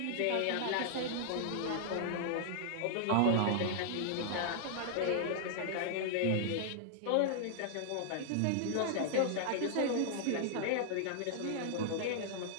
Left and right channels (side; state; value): both; different; correlation -0.01